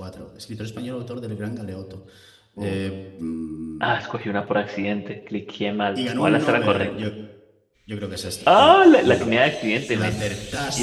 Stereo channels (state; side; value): identical; both; correlation 1.00